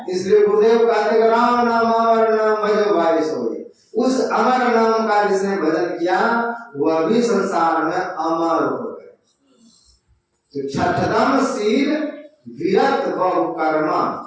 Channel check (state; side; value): identical; both; correlation 1.00